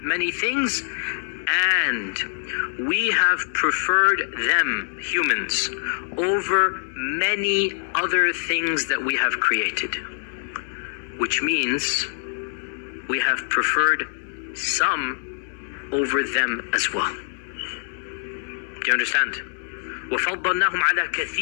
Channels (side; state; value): right; silent; digital silence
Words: many things, and we have preferred them, humans, over many other things that we have created. Which means we have preferred some over them as well. Do you understand? وَفَضَّلْنَاهُمْ عَلَى